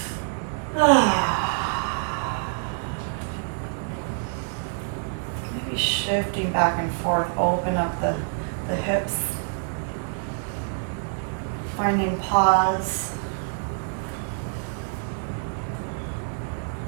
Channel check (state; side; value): silent; left; 60 dB below the other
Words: Maybe shifting back and forth, open up the hips. Finding pause.